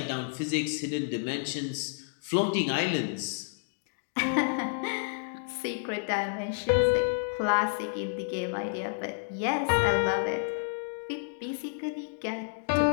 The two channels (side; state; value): right; silent; digital silence